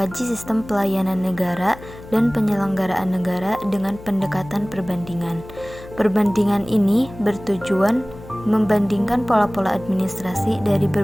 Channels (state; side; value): noise; left; hum, 17 dB below the sound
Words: sistem pelayanan negara dan penyelenggaraan negara dengan pendekatan perbandingan. Perbandingan ini bertujuan membandingkan pola-pola administrasi dari